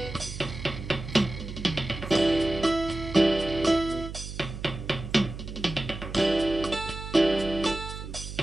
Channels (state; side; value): noise; right; hum, 9 dB below the sound